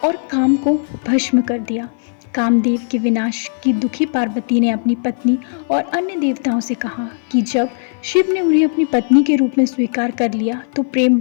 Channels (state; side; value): silent; right; 57 dB below the other